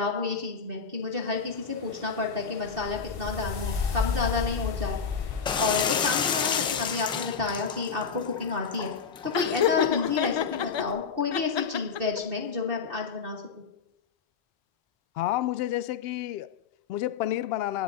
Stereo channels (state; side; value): quieter; right; 5.9 dB